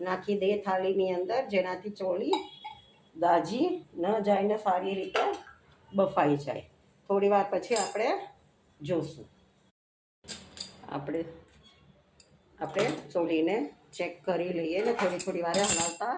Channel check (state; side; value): identical; both; correlation 1.00